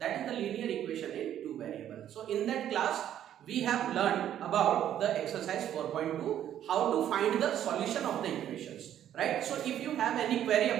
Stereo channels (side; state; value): left; quieter; 10.8 dB